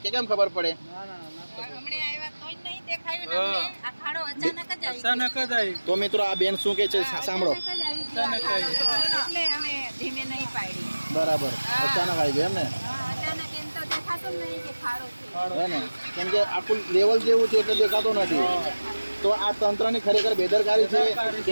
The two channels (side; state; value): both; inverted; correlation -1.00